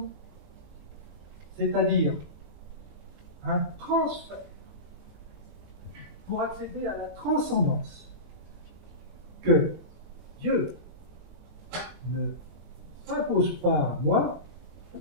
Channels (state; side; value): late; left; 20 ms